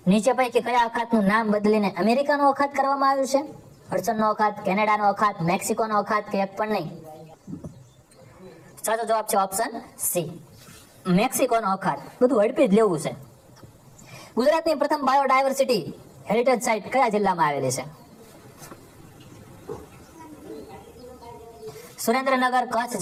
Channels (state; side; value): identical; both; correlation 1.00